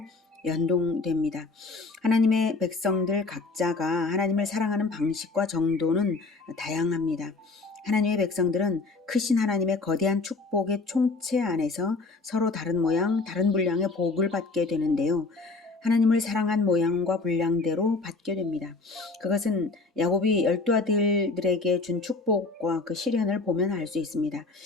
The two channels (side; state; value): right; quieter; 3.8 dB